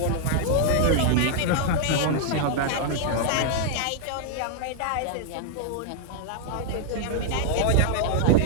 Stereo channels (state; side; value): different; both; correlation 0.00